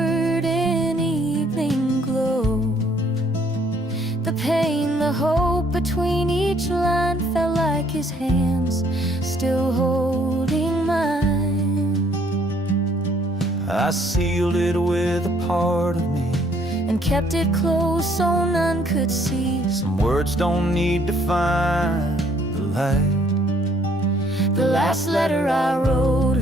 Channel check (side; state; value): both; normal; correlation 0.64